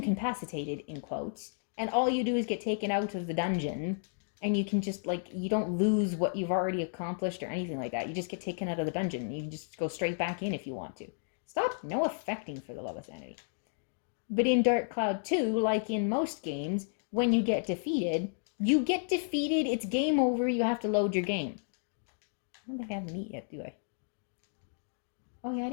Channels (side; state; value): right; silent; digital silence